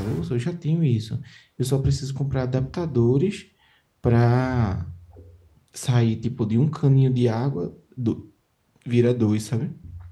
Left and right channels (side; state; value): both; identical; correlation 1.00